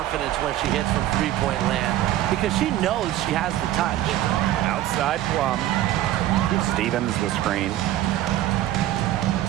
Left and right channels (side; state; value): left; quieter; 13.7 dB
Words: when she hits from three-point land because she knows she has the touch. Outside Plum. Stevens the screen.